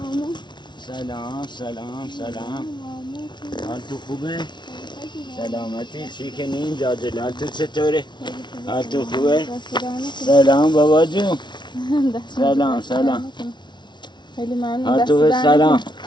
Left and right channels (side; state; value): right; late; 0.22 ms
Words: سلام حال تو خوبه؟ سلامتی چی کنین جاجل حال تو چطوره؟ حال تو خوبه؟ سلام بابا جون سلام خیلی ممنون. حال تو سلام